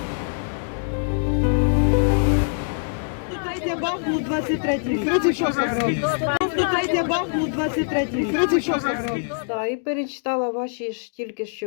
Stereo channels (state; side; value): silent; right; digital silence